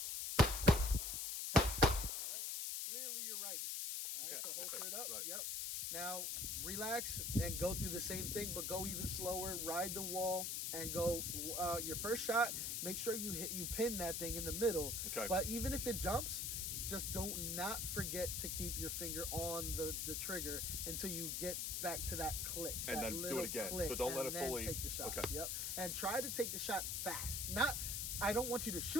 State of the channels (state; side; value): noise; left; hiss, 1 dB below the sound